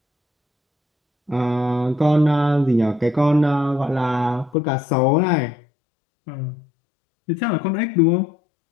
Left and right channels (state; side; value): drops out; right; at 4.5 s